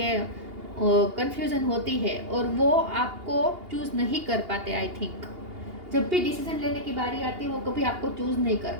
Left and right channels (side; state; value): left; late; 2.8 ms